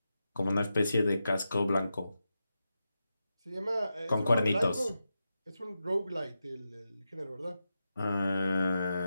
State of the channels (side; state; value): both; inverted; correlation -0.89